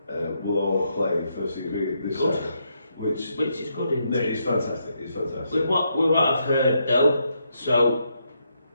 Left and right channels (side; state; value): both; inverted; correlation -0.79